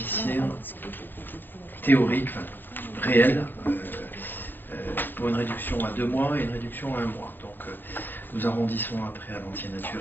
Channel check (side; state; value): right; late; 0.092 ms